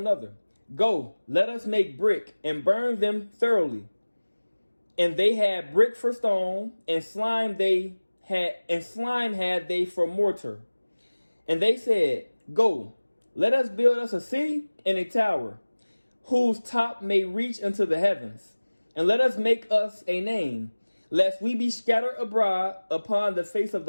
"Go, let us make brick and burn them thoroughly." And they had brick for stone, and slime had they for mortar. And they said, "Go, let us build us a city and a tower, whose top may reach into the heavens. And let us make us a name, lest we be scattered abroad upon the face of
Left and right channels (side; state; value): both; inverted; correlation -1.00